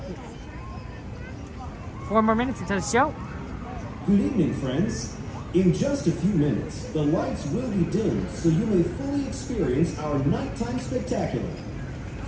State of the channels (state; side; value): identical; both; correlation 1.00